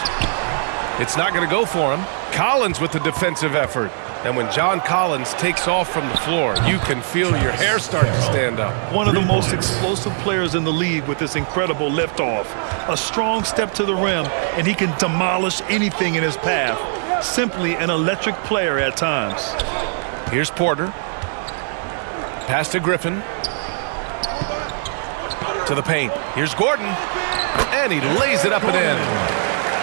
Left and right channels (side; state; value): left; silent; digital silence